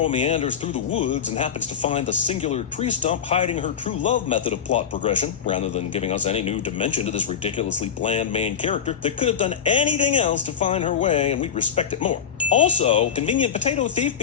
meanders through the woods and happens to find the singular tree stump hiding her true love method of plot progression, rather than giving us any new dimension to this ridiculously bland main character that could have done anything else to find her way, and we'd respect it more. Also, convenient potato thief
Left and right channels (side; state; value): right; quieter; 7.8 dB